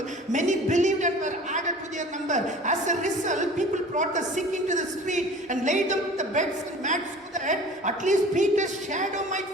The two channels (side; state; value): both; normal; correlation 0.43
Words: Many believed and were added to their number. As a result, people brought the sick into the street and laid them on the beds and mats so that at least Peter's shadow might